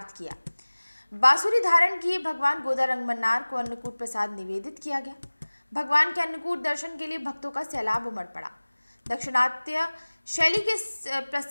किया। बांसुरी धारण किए भगवान गोदा रंगमन्नार को अन्नकूट प्रसाद निवेदित किया गया। भगवान के अन्नकूट दर्शन के लिए भक्तों का सैलाब उमड़ पड़ा। दक्षिणात्य शैली के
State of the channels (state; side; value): inverted; both; correlation -1.00